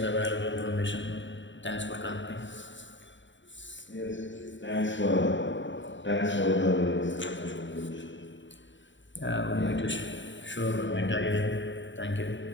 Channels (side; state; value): right; late; 0.54 ms